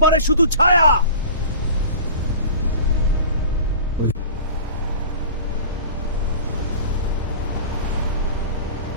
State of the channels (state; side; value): inverted; both; correlation -0.38